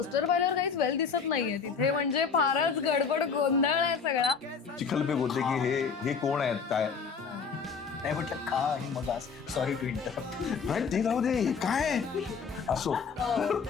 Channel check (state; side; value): quieter; right; 5.7 dB